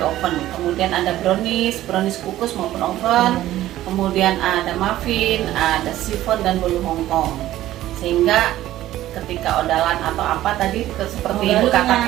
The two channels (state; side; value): quieter; left; 14.3 dB